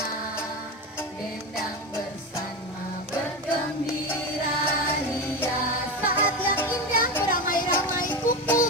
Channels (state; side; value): normal; both; correlation 0.20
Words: dendang bersama, bergembira ria. Saat yang indah beramai-ramai